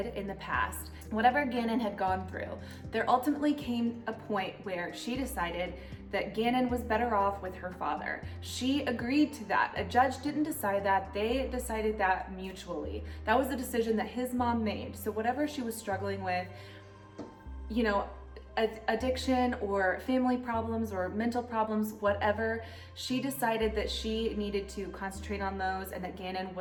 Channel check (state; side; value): identical; both; correlation 1.00